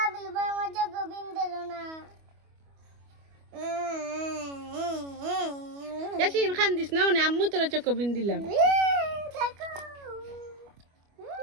ভাই আমার তো কুবিন দিল না এ শিরিন খান্দিস না ওনে আম্মু তোরা চকবিন দিলাম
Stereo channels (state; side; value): late; left; 25 ms